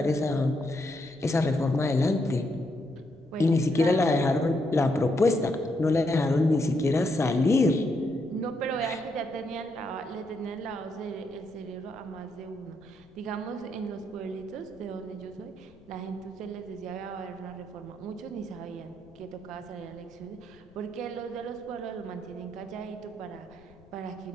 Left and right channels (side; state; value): left; noise; rumble, 27 dB below the sound